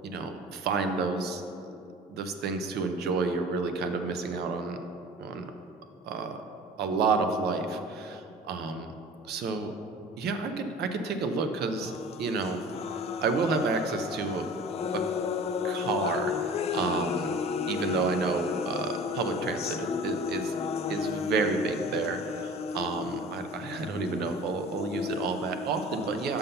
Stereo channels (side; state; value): both; normal; correlation 0.42